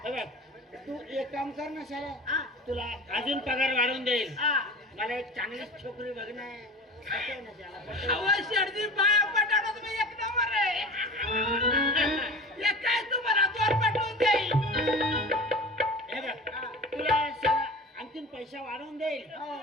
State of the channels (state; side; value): normal; both; correlation 0.35